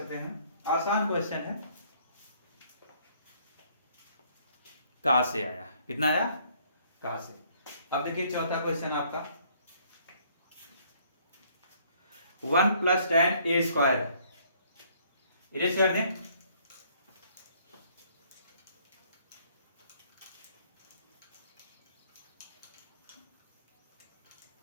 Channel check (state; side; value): inverted; both; correlation -0.63